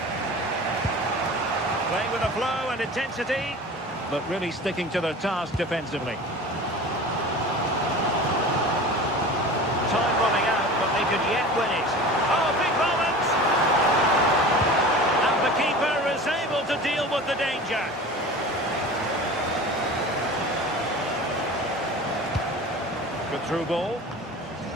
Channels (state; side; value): normal; both; correlation 0.37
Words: Playing with a flow and intensity, but really sticking to their task defensively. Time running out, but they could yet win it. Oh, big moment! And the keeper is able to deal with the danger. Good through ball.